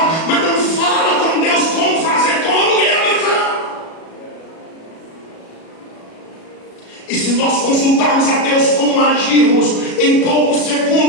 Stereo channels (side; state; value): right; late; 37 ms